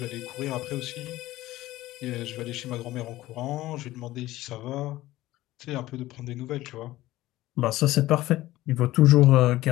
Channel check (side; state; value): right; quieter; 16.5 dB